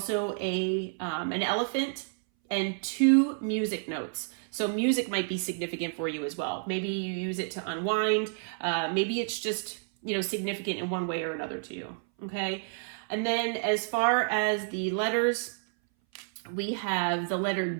an elephant and 2 music notes. So music might be significant for you as well. Maybe you use it to unwind. Maybe it's just, significant in one way or another to you. Okay. And then as far as the letters, we have the letter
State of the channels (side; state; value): left; silent; 58 dB below the other